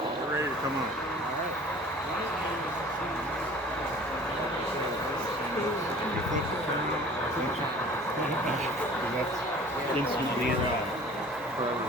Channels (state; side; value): normal; both; correlation 0.46